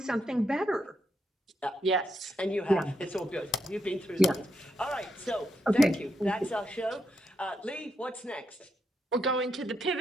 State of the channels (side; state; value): both; normal; correlation 0.81